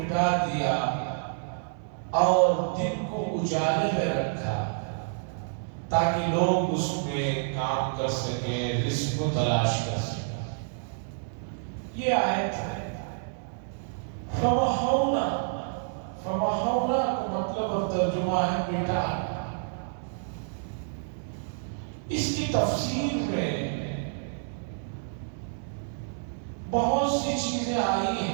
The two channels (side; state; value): left; silent; 59 dB below the other